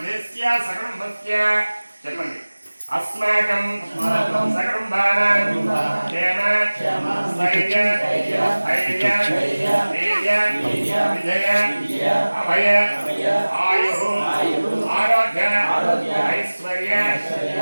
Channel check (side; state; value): both; inverted; correlation -1.00